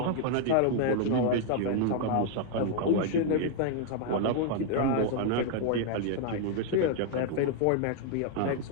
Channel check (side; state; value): both; different; correlation 0.00